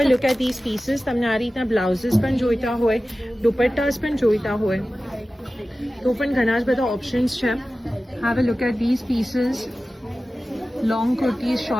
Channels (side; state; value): both; normal; correlation 0.95